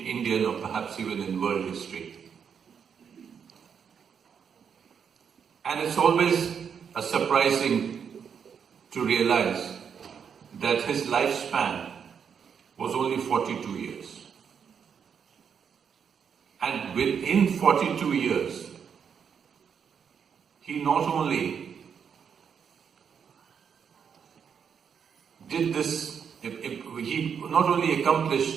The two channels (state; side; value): quieter; left; 7.2 dB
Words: or perhaps even in world history. And it's always surprising to realize that his lifespan was only 42 years. And within 42 years, he not only did this, he not only